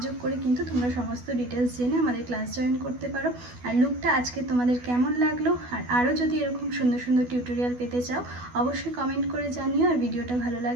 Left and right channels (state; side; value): late; left; 12 ms